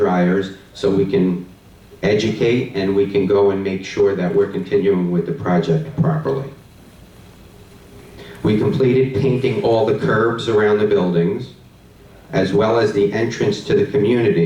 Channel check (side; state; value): both; identical; correlation 1.00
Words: so we can educate and we can go and make sure that we're continuing with the project properly. We completed painting all the curbs around the buildings, as well as the entrance to the